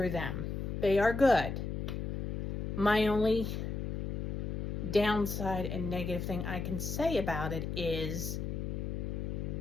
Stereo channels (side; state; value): left; noise; hum, 3 dB below the sound